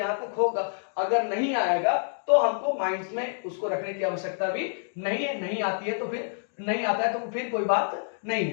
तक होगा, अगर नहीं आएगा तो हमको माइंड में उसको रखने की आवश्यकता भी नहीं है। नहीं आती है तो फिर नहीं आता है तो फिर कोई बात नहीं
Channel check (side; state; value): right; silent; digital silence